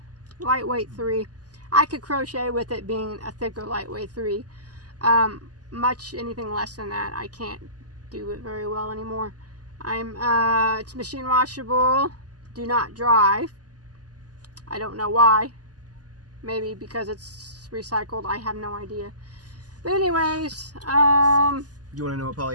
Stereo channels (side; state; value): left; late; 0.68 ms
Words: lightweight 3. I could crochet with it being a thicker lightweight 3. Much anything less than that, I can't do it very well anymore. It's machine washable, do not dry. I don't know why. Maybe because it's recycled, I have no idea. But anyways, you want to know what